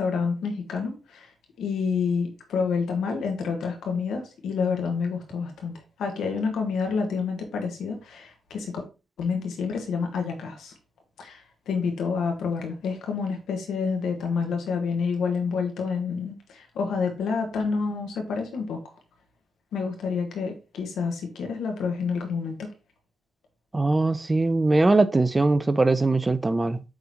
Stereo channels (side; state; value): both; normal; correlation 0.85